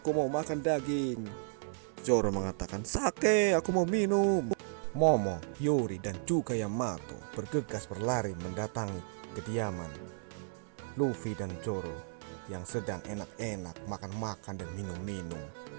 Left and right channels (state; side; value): silent; left; 55 dB below the other